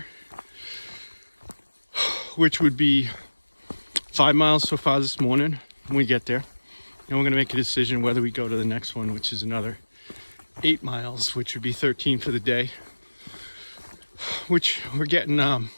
which would be 5 miles so far this morning when we get there. And we're gonna make a decision whether we go to the next one, which is another 8 miles, which would be 13 for the day. Which we're getting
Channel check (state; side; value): inverted; both; correlation -1.00